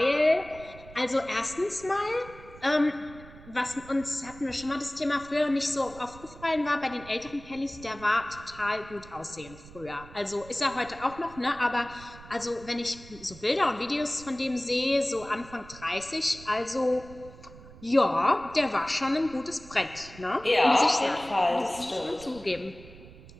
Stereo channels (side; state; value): right; noise; rumble, 19 dB below the sound